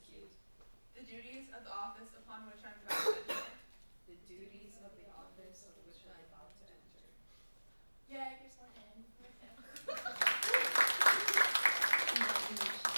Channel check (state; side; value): inverted; both; correlation -1.00